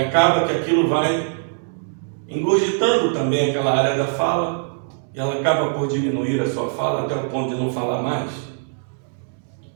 que aquilo vai engurgitando também aquela área da fala, e ela acaba por diminuir a sua fala até o ponto de não falar mais.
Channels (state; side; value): silent; left; digital silence